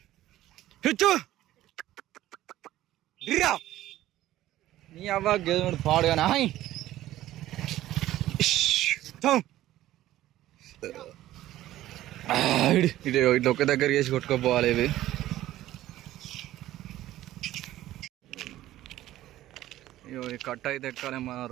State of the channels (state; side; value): quieter; left; 14.5 dB